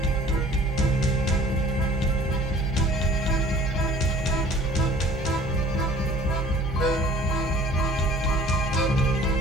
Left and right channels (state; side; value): normal; both; correlation 0.50